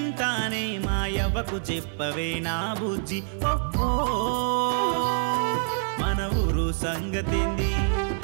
మా యవ్వకు చెప్పవే నా బుజ్జి ఓహో మన ఊరు సంగతింది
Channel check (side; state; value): left; silent; 61 dB below the other